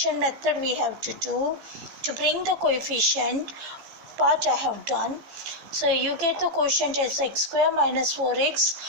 method we have to do to bring the coefficient part I have done. So you get the quotient as x square minus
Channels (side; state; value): left; late; 15 ms